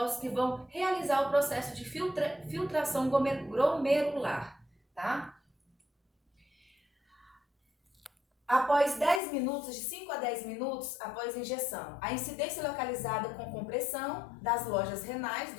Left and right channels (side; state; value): right; drops out; at 9.2 s